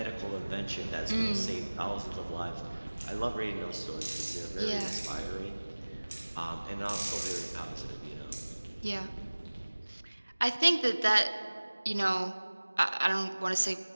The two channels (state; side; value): inverted; both; correlation -1.00